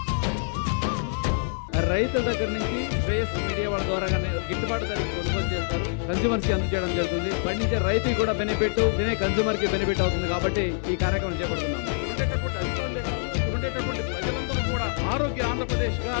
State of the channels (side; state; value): right; silent; 56 dB below the other